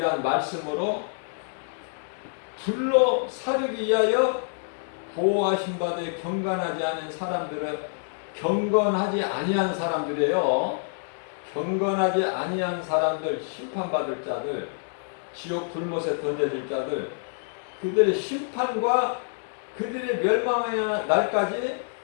말씀으로 불로 사르기 위하여 보호하신 바되 경건하지 않은 사람들은 경건하지 아니한 사람들이에요. 경건하지 아니한 사람들, 심판받을 자들, 지옥 불못에 던져질 자들, 그들의 심판과 그들의 멸망의 날까지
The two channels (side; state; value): right; silent; digital silence